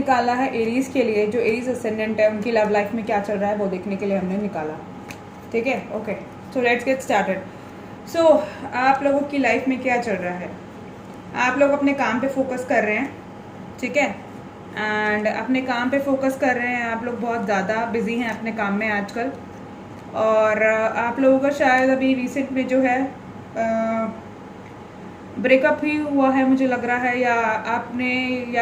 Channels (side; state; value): both; identical; correlation 1.00